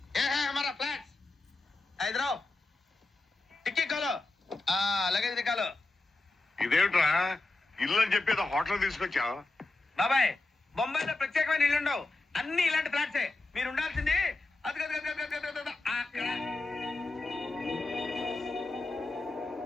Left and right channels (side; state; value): right; quieter; 3.1 dB